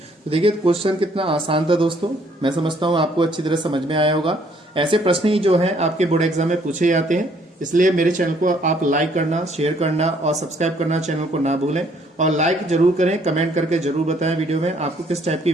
तो देखिए क्वेश्चन कितना आसान था दोस्तों। मैं समझता हूँ आपको अच्छी तरह समझ में आया होगा। ऐसे प्रश्न ही जो हैं आपके बोर्ड एग्जाम में पूछे जाते हैं, इसलिए मेरे चैनल को आप लाइक करना, शेयर करना और सब्सक्राइब करना चैनल को ना भूलें। और लाइक जरूर करें, कमेंट करके जरूर बताएं वीडियो में आपको किस टाइप की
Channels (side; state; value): both; normal; correlation 0.64